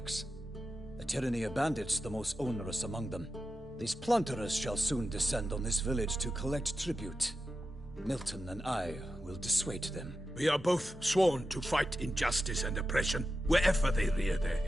The tyranny of bandits the most onerous among them. These plunderers shall soon descend on this village to collect tribute. Milton and I will dissuade them. We are both sworn to fight injustice and oppression wherever they rear their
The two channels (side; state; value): both; normal; correlation 0.91